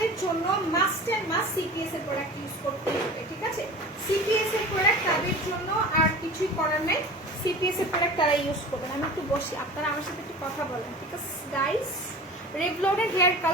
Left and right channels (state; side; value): normal; both; correlation 0.36